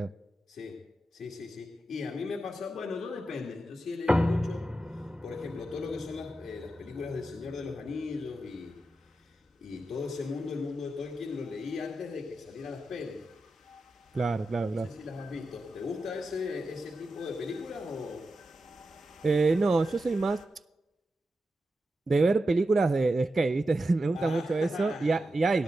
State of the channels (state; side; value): normal; both; correlation 0.89